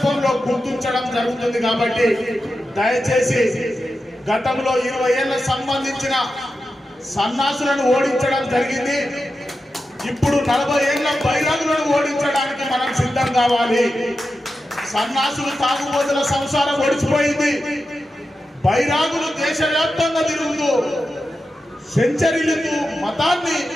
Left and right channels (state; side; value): normal; both; correlation 0.91